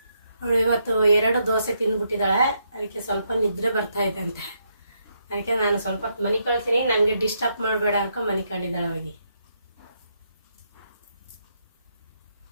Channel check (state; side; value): inverted; both; correlation -0.78